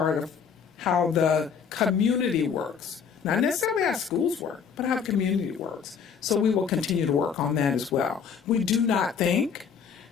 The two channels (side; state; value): right; quieter; 6.7 dB